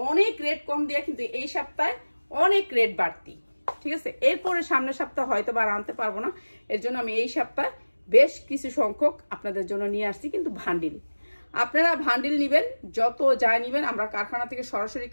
অনেক রেট কম দিয়ে, কিন্তু এই সপ্তাহে অনেক রেট বাড়তি। ঠিক আছে, এরপরে সামনের সপ্তাহ হয়তো বা আনতে পারবো না, এর জন্য আমি এই সপ্তাহে বেশ কিছু সংখ্যক আপনাদের জন্য নিয়ে আসছি। কিন্তু ভান্ডিল, আপনারা ভান্ডিল নিবেন, যত যায় নিবেন। আমরা কারখানা থেকে সরাসরি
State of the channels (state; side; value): inverted; both; correlation -1.00